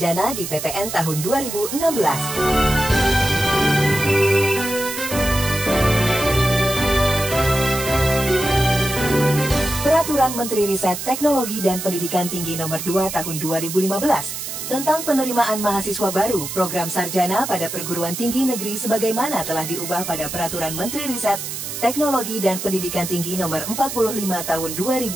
di PTN tahun 2016. Peraturan Menteri Riset Teknologi dan Pendidikan Tinggi Nomor 2 Tahun 2015 tentang penerimaan mahasiswa baru program sarjana pada perguruan tinggi negeri sebagaimana telah diubah pada Peraturan Menteri Riset Teknologi dan Pendidikan Tinggi Nomor 45 Tahun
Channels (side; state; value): right; noise; hiss, 6 dB below the sound